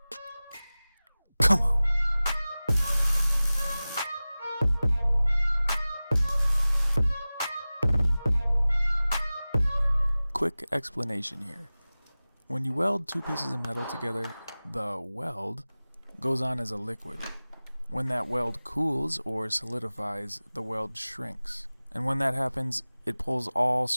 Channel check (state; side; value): inverted; both; correlation -0.98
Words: Come on! Quick explanation here. When you weld two pieces of metal together, the weld goes on as a liquid. When that weld cools or solidifies, the weld shrinks. And when that happens, it pulls all